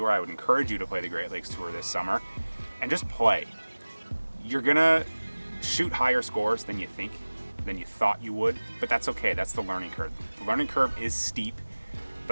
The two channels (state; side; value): inverted; both; correlation -1.00